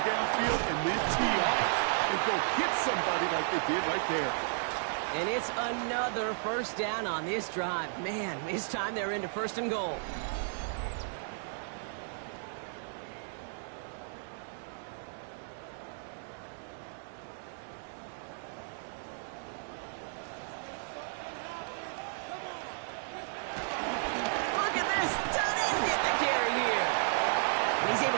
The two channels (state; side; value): silent; left; digital silence